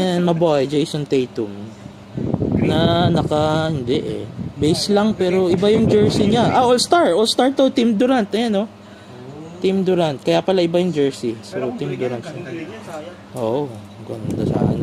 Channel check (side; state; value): both; identical; correlation 1.00